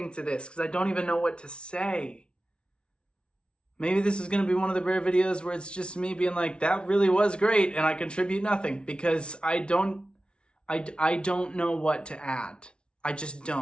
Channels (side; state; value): right; late; 0.057 ms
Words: to this because I don't even know what to say. Maybe this is going to be one of the rare videos where it's just me being like, that really was great and I contribute nothing because I don't know what to add. I just